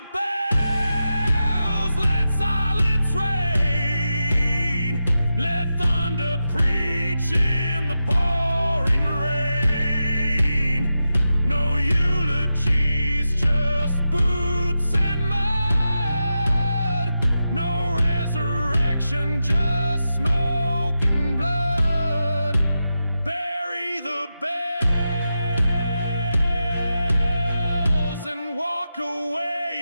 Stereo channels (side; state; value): both; inverted; correlation -0.89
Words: bells, let silence reign, let thunder preach in the pouring rain. No eulogies, just boots and mud, no resurrection, just smoke and blood. Bury the bells and walk